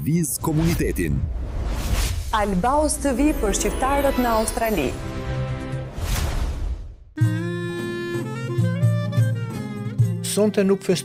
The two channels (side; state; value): both; identical; correlation 1.00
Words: komunitetin. Albaus TV për shqiptarët në Australi. Sonte nuk